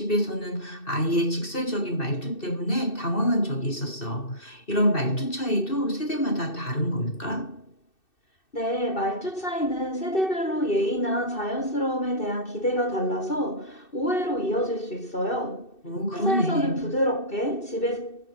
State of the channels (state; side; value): late; right; 2.6 ms